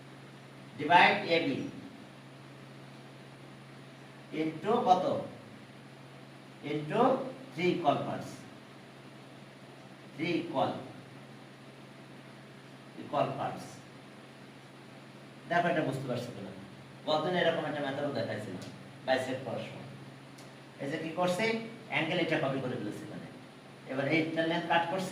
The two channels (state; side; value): identical; both; correlation 1.00